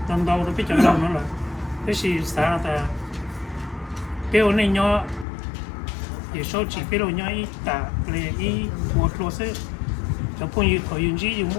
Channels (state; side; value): drops out; right; at 5.2 s